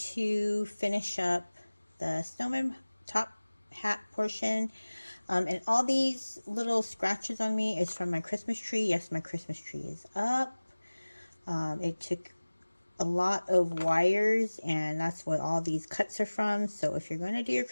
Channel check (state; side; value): inverted; both; correlation -1.00